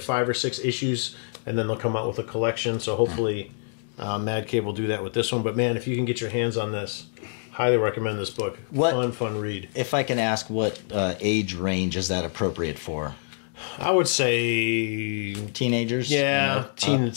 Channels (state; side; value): silent; right; digital silence